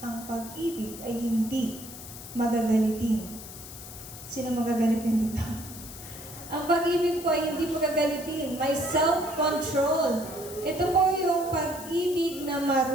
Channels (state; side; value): noise; left; hiss, 13 dB below the sound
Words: Ang pag-ibig ay hindi magagalitin. Sino magagalitin dito? Ang pag-ibig po ay hindi magagalitin. May self-control. Ito po yung pag-ibig na